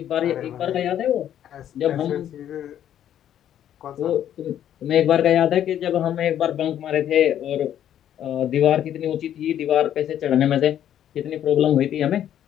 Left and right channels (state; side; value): quieter; right; 10.6 dB